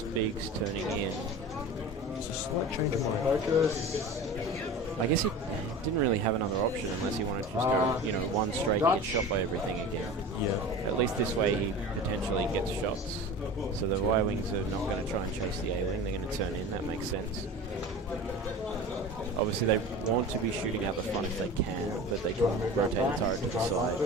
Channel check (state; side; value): normal; both; correlation 0.34